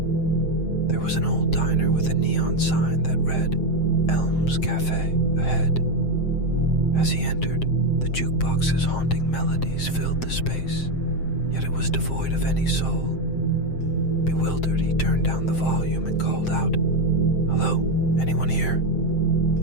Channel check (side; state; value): right; late; 7.6 ms